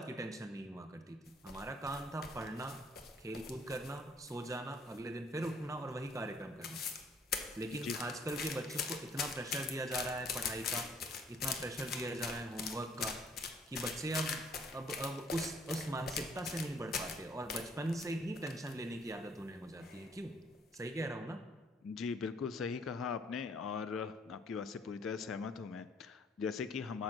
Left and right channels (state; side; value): normal; both; correlation 0.62